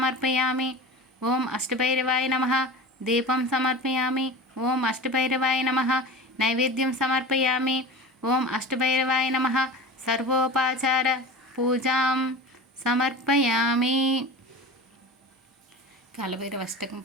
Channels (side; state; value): both; normal; correlation 0.33